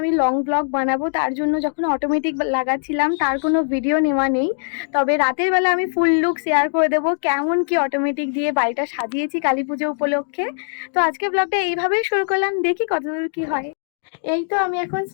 লং ব্লগ বানাবো, তার জন্য যখন অটোমেটিক লাগাচ্ছিলাম তার কোনো ভিডিও নেওয়া নেই। তবে রাতের বেলা আমি ফুল লুক শেয়ার করে দেবো কেমন কি অটোমেটিক দিয়ে বাড়িটা সাজিয়েছি কালী পুজো উপলক্ষে। তো আজকে ব্লগটা এইভাবেই শুরু করলাম, দেখি কতদূর কি হয়। এই তো আমি এখন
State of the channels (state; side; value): silent; right; digital silence